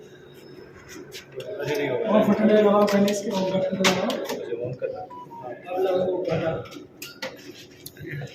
मुझे नहीं होगा। और फटने लगाओ पहले इसके बटन लगाओ। मुझे ऑन करना, अब लगाओ बटन।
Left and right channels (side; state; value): both; identical; correlation 1.00